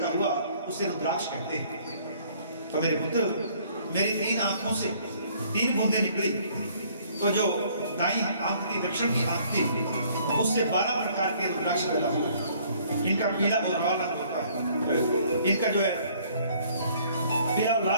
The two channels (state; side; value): inverted; both; correlation -0.60